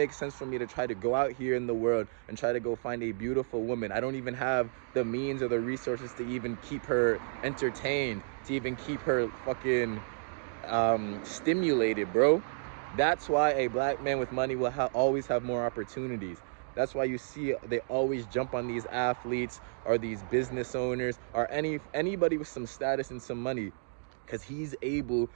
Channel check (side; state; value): left; silent; digital silence